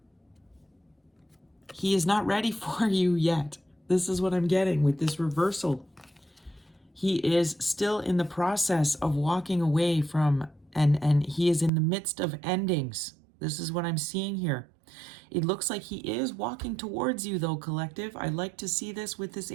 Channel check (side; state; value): left; drops out; at 11.7 s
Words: He is not ready for you yet. This is what I'm getting with this reversal. He is still in the process of walking away from, and he is in the midst of endings. This is what I'm seeing here. It looks like he is walking towards you though, collective. I like to see this with this